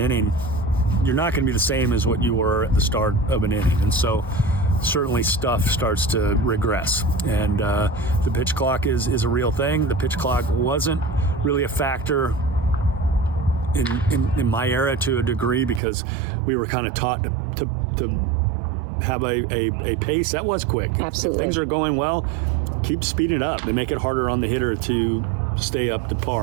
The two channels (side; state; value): left; drops out; at 15.8 s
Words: you're not going to be the same as what you were at the start of an inning. And so certainly stuff starts to regress. And the pitch clock is a real thing. The pitch clock wasn't really a factor in my era to a degree because we were kind of taught to have a pace that was quick. Absolutely. If things are going well, keep speeding it up. They make it harder on the hitter to stay up to